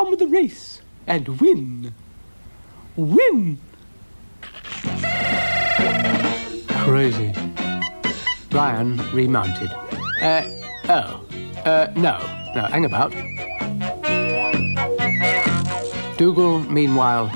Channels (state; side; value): inverted; both; correlation -1.00